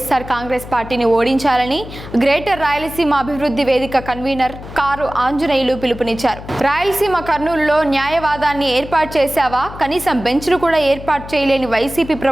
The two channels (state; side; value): noise; left; hum, 13 dB below the sound